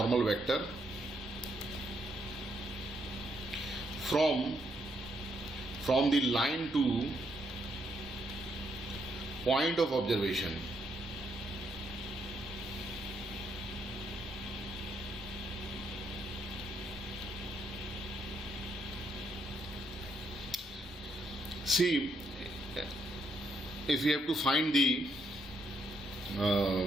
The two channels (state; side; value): normal; both; correlation 0.76